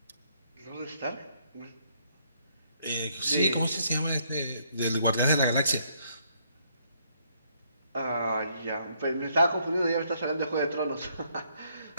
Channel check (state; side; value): inverted; both; correlation -0.70